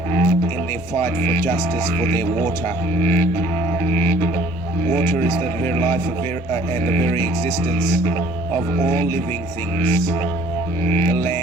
in their fight for justice for their water. Water is the very life and the very existence of all living things. The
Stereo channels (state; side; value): normal; both; correlation 0.54